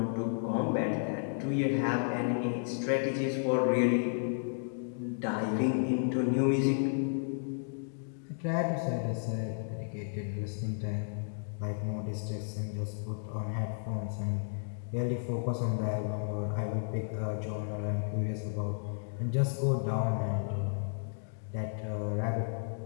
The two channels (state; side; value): silent; right; digital silence